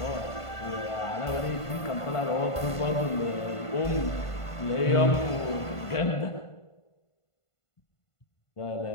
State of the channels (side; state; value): right; late; 1.5 ms